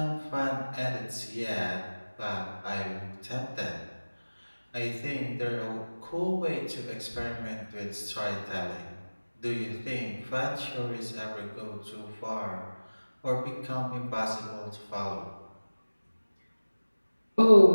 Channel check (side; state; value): both; inverted; correlation -1.00